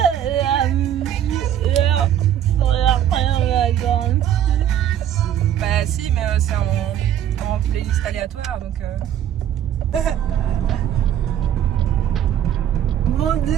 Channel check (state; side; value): quieter; left; 10.4 dB